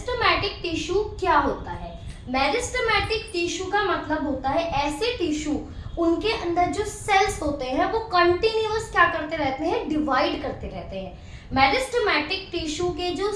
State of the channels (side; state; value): both; identical; correlation 1.00